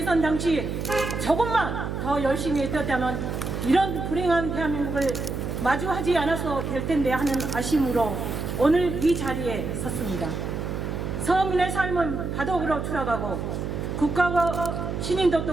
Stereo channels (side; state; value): right; noise; hum, 4 dB below the sound